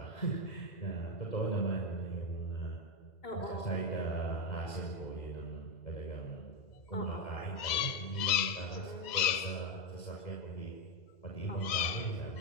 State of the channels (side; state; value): right; late; 2.0 ms